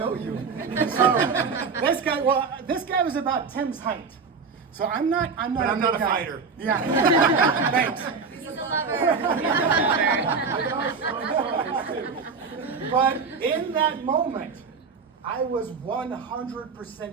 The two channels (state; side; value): quieter; left; 5.1 dB